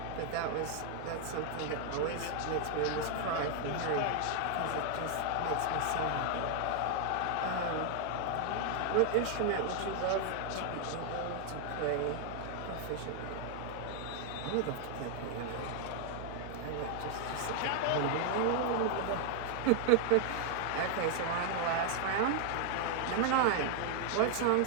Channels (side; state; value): both; different; correlation 0.00